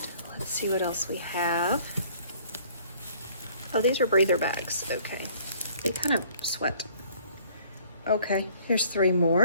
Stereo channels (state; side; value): inverted; both; correlation -0.56